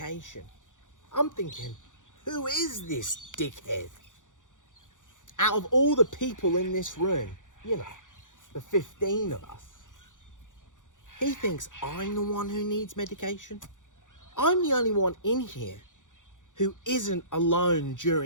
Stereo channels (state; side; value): late; right; 0.87 ms